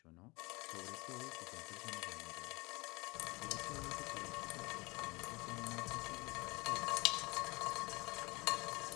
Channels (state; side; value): quieter; right; 24.7 dB